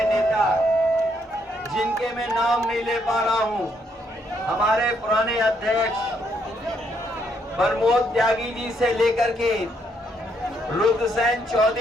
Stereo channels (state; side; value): normal; both; correlation 0.73